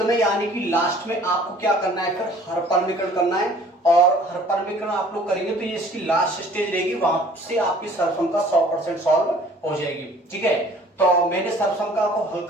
में यानी कि लास्ट में आपको क्या करना है, फिर हर परमीकरण करना है, और हर परमीकरण आप लोग करेंगे तो ये इसकी लास्ट स्टेज रहेगी, वहां से आपकी सर्वसंख्या 100% सॉल्व हो जाएगी। ठीक है, तो मैंने सर्वसंख्या को हल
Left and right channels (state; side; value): normal; both; correlation 0.52